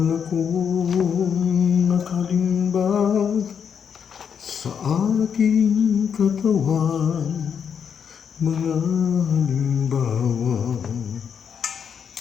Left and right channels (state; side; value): quieter; right; 7.3 dB